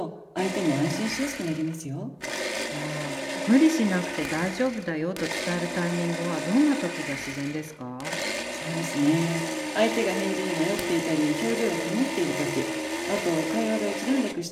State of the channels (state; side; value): identical; both; correlation 1.00